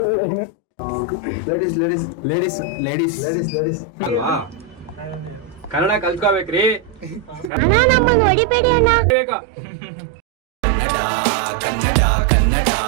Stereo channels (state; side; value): drops out; left; at 7.5 s